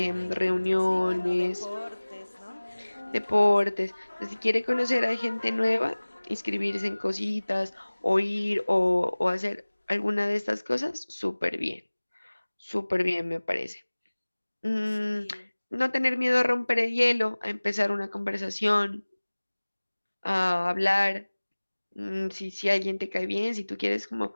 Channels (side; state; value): both; inverted; correlation -1.00